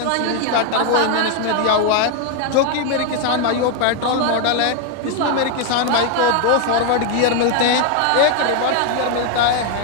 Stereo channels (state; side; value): different; both; correlation 0.01